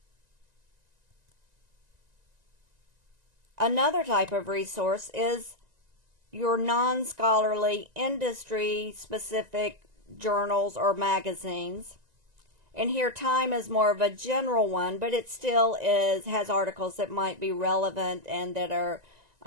Another type of resource is your non-scholarly, industry-specific journals or magazines. And here Time is more of a general one, but it still has articles that might be relevant and that are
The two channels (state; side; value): late; left; 1.9 ms